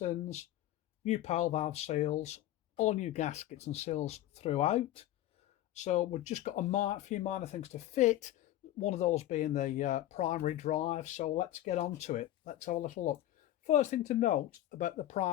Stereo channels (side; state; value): right; quieter; 13.8 dB